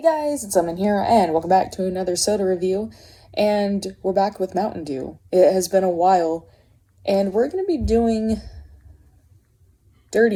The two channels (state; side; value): identical; both; correlation 1.00